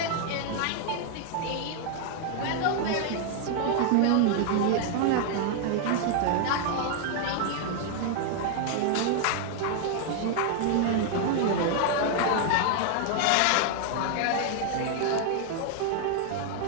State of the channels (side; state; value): both; different; correlation 0.00